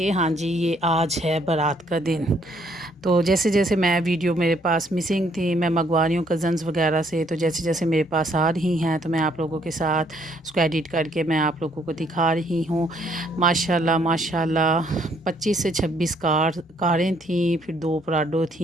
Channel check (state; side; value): normal; both; correlation 0.67